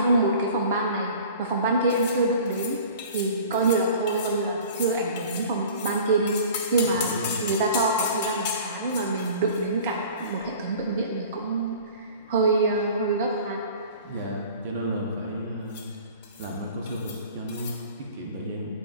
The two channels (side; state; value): both; inverted; correlation -0.44